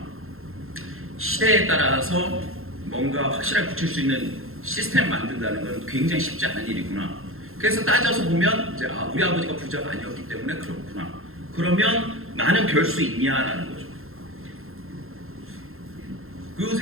시대에 따라서 뭔가 확실하게 붙일 수 있는 시스템을 만든다는 건 굉장히 쉽지 않은 일이구나. 그래서 따져서 보면 이제 우리 아버지가 부자가 아니었기 때문에 그렇구나. 그러면 나는 별 수 있냐라는 거죠. 그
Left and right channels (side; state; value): left; late; 0.61 ms